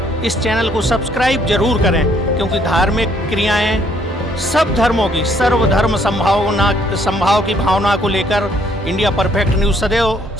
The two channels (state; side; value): normal; both; correlation 0.66